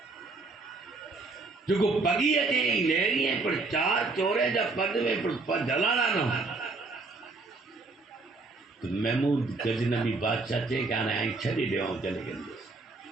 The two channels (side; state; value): left; quieter; 3.7 dB